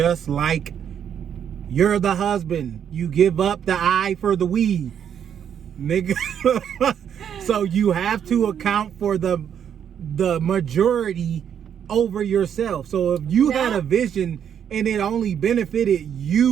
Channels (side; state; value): left; quieter; 8.7 dB